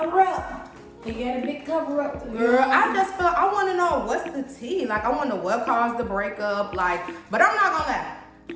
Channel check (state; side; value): identical; both; correlation 1.00